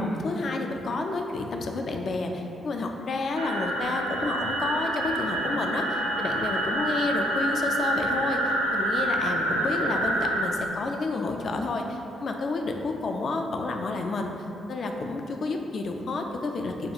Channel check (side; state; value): both; normal; correlation 0.68